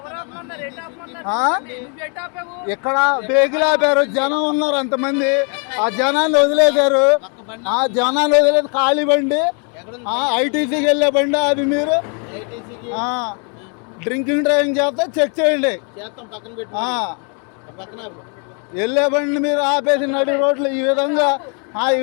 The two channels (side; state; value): right; quieter; 39.1 dB